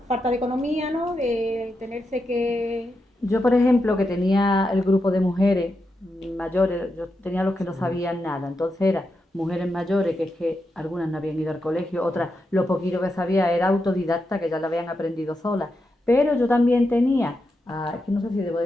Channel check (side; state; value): both; normal; correlation 0.86